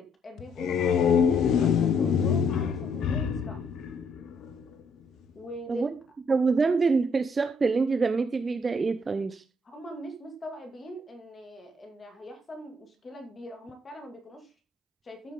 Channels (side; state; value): both; normal; correlation 0.69